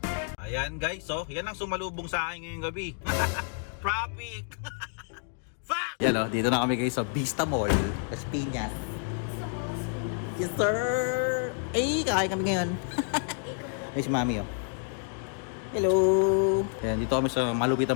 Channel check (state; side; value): silent; right; 57 dB below the other